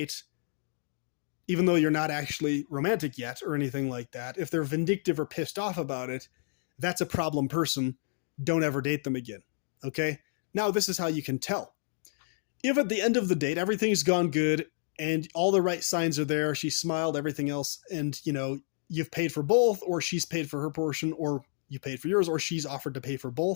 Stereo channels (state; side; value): silent; right; digital silence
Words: even though you're not actually romantic yet or anything like that, if they're vindictive or pissed off about it, that's a problem person. Don't ever date them again. Okay? Now, this is how you can tell. If at the end of the date, everything's gone good and all the right signs are there, she smiled, everything else, and, you've paid for both, or she's paid for her portion, or you paid for yours, or she's offered to pay for